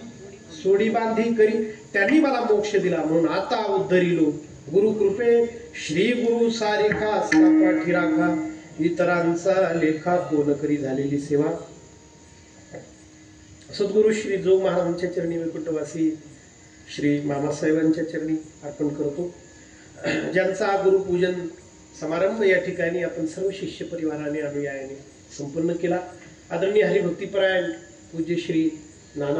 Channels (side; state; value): both; identical; correlation 1.00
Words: सोडी बांधी करी, त्यांनी मला मोक्ष दिला, म्हणून आता उद्धरिलो. गुरु कृपे श्री गुरु सारेखा असता पाठी राखा, इतरांचा लेखा कोण करी झालेली सेवा. सद्गुरु श्री जोग महाराजांच्या चरणी, वैकुंठवासी श्री मामासाहेबांच्या चरणी अर्पण करतो. ज्यांचा गुरुपूजन समारंभ या ठिकाणी आपण सर्व शिष्य परिवाराने अनुयायाने संपन्न केला. आदरणीय हरिभक्तीपरायण पूज्य श्री